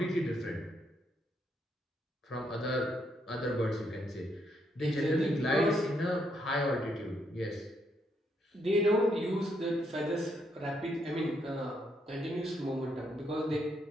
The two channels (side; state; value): both; normal; correlation 0.76